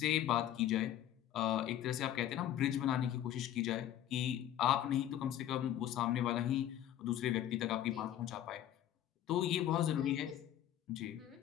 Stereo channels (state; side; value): quieter; right; 11.7 dB